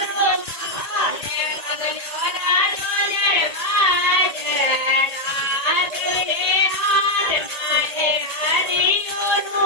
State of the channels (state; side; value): late; right; 1.9 ms